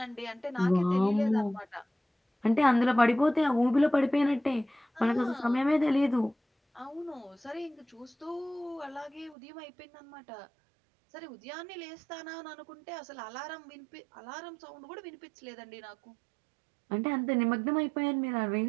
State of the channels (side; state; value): left; drops out; at 9.3 s